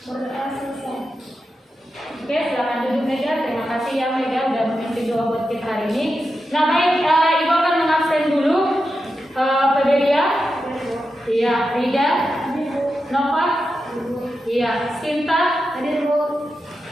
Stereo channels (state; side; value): normal; both; correlation 0.89